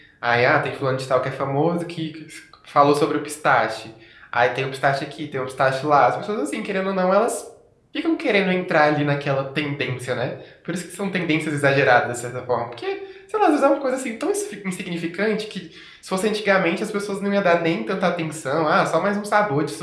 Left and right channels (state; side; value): identical; both; correlation 1.00